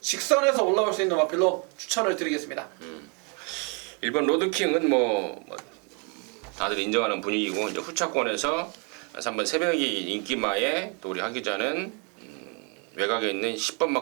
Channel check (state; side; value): quieter; left; 35.5 dB